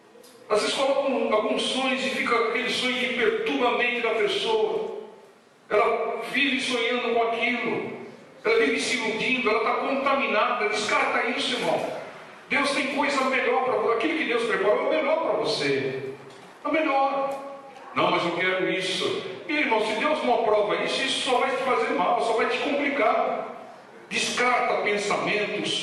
Às vezes colocam alguns sonhos e fica aquele sonho que perturba a mente da pessoa. Ela vive sonhando com aquilo. ela vive se iludindo, ela está contaminada. Descarta isso, irmão. Deus tem coisa melhor para você. Aquilo que Deus preparou é o melhor para você. É o melhor. Não, mas eu quero isso. E, irmão, se Deus não aprova isso, isso só vai te fazer mal, só vai te complicar. Descarta pensamentos,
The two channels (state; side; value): identical; both; correlation 1.00